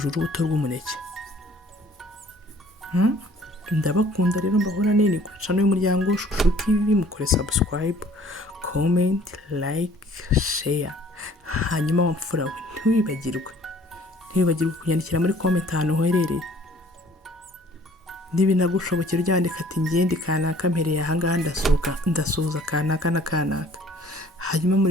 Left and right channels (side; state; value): both; normal; correlation 0.55